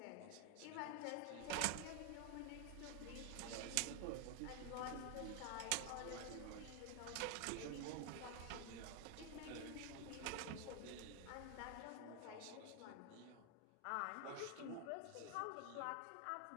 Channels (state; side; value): different; both; correlation 0.01